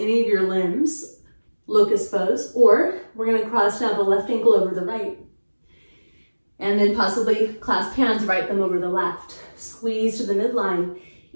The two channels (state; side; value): inverted; both; correlation -1.00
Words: any of your limbs, locust pose, or we're gonna cross now the left ankle over the right. And then possibly clasp hands, right thumb over the left. Squeeze to the midline.